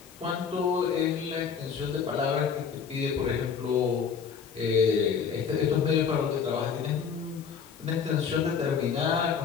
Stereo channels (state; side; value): quieter; right; 6.5 dB